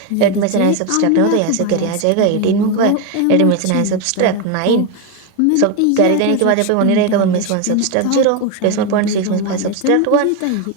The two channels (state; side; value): different; both; correlation 0.02